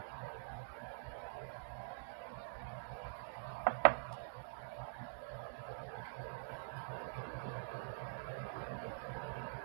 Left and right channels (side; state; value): left; silent; digital silence